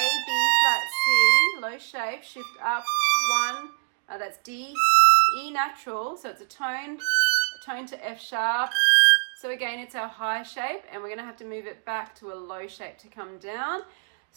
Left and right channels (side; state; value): left; silent; digital silence